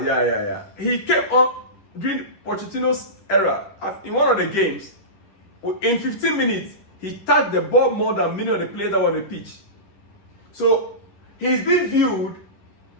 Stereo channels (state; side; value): late; right; 10 ms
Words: He came on during Pochettino's era. In one of the games, in 15 minutes, he touched the ball more than many of the players that were on the pitch. So he's being viewed